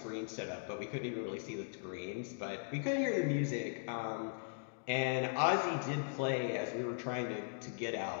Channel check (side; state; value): right; silent; digital silence